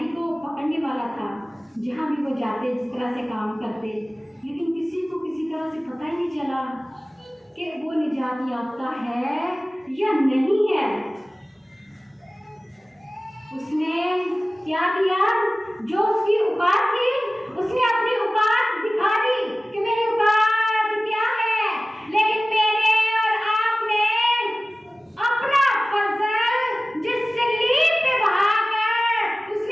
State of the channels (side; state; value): both; normal; correlation 0.97